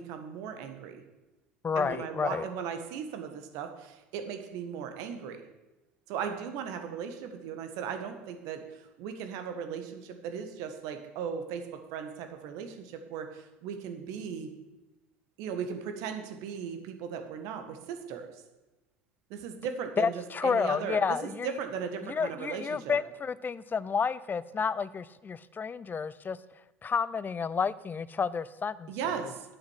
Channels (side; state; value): both; normal; correlation 0.56